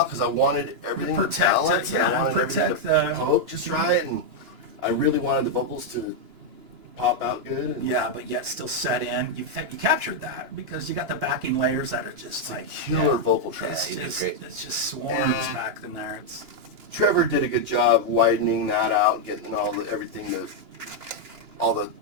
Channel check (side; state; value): left; late; 2.9 ms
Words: because I wanted everything to protect it, balance and I yeah, wanted everything protect to the- poke just right, and I really wanted the vocals to pop out good. And yeah, but yet still set in. You captured that because you got the backing layers that are just it's a like killer vocal track. it's he did just, great. it's just swarms back in there. It's Trevor did a good job widening that out, getting all the